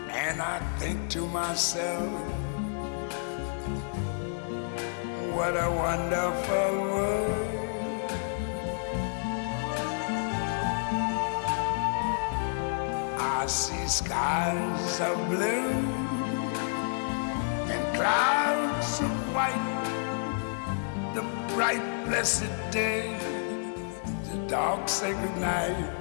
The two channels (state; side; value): silent; right; digital silence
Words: And I think to myself, what a wonderful world. I see skies of blue and clouds of white, the bright blessed day, the dark sacred night.